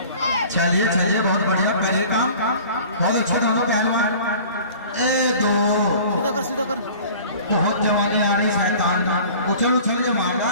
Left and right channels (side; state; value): both; inverted; correlation -0.45